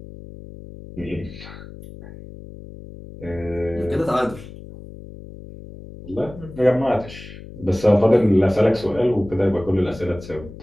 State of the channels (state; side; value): noise; left; hum, 15 dB below the sound